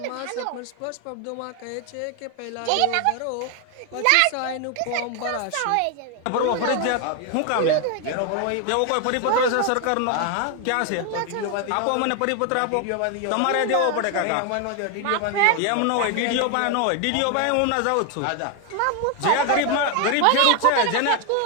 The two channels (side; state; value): both; different; correlation 0.00